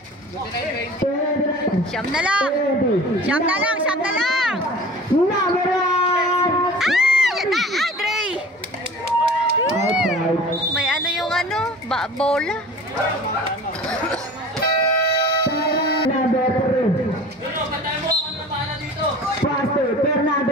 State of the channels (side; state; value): both; normal; correlation 0.41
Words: 29. Siyam na lang! 20. Siyam na lang, siyam na lang! Number 1. Ay! Yan na! Ay, Dre! Outside. May ano yung ano? Bola? Number 3. Pastor